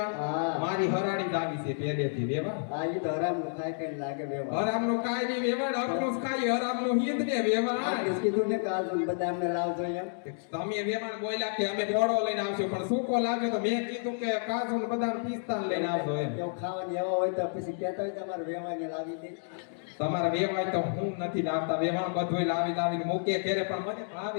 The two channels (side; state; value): right; silent; digital silence